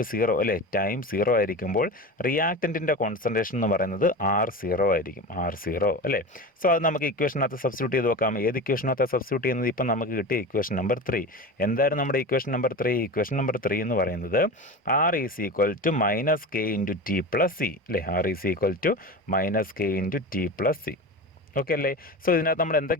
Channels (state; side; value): normal; both; correlation 0.28